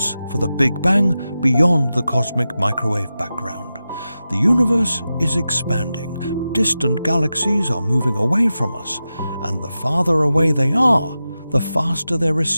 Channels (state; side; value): inverted; both; correlation -0.92